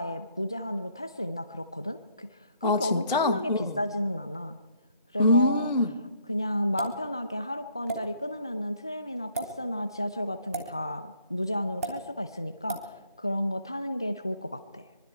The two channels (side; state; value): both; inverted; correlation -0.65